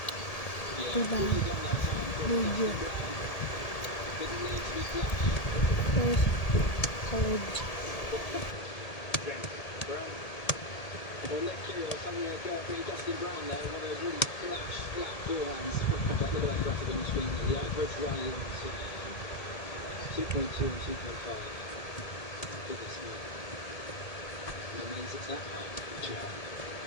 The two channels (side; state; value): right; late; 1.8 ms